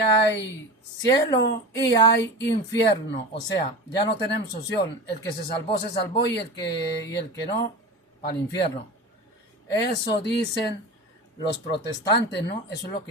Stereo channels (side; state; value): both; normal; correlation 0.29